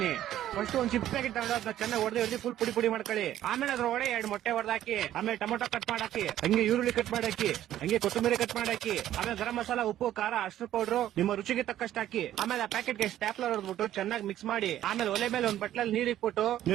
ಫಸ್ಟ್ ಒಂದ್ ಚಿಪ್ಸ್ ಪ್ಯಾಕೆಟ್ ತಗೊಂಡು ಅದನ್ನ ಚೆನ್ನಾಗಿ ಹೊಡೆದು ಫುಲ್ ಪುಡಿ ಮಾಡ್ಕೊಳ್ಳಿ. ಆಮೇಲೆ ಅದ್ರೊಳಗೆ 2 ಮೊಟ್ಟೆ ಹೊಡೆದಾಕಿ, ಆಮೇಲೆ ಟೊಮೊಟೊ ಕಟ್ ಮಾಡಾಕಿ, ಹಂಗೆ ಈರುಳ್ಳಿ ಕಟ್ ಮಾಡಾಕಿ, ಹಂಗೆ ಕೊತ್ತಂಬರಿ ಕಟ್ ಮಾಡಾಕಿ, ಆಮೇಲೆ ಗರಂ ಮಸಾಲ, ಉಪ್ಪು, ಖಾರ, ಅರ್ಶಿನ ಪೌಡರ್ ನಿಮ್ಮ ರುಚಿಗೆ ತಕ್ಕಷ್ಟು ಹಾಕಿ. ಆಮೇಲೆ ಆ ಪ್ಯಾಕೆಟ್ ಗೆ ಸ್ಟ್ಯಾಪ್ಲರ್ ಹೊಡೆದ್ಬಿಟ್ಟು ಚೆನ್ನಾಗಿ ಮಿಕ್ಸ್ ಮಾಡಿ, ಆಮೇಲೆ ಒಲೆ ಮೇಲೆ ಒಂದ್ ಬಟ್ಲಲ್ಲಿ ನೀರ್ ಇಟ್ಬಿಟ್ಟು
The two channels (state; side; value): quieter; left; 12.4 dB